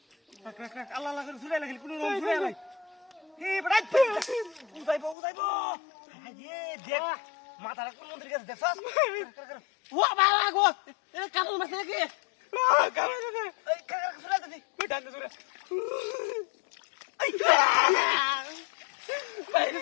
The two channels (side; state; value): right; drops out; at 5.2 s